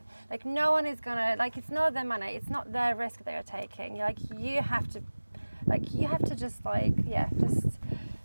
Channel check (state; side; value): inverted; both; correlation -1.00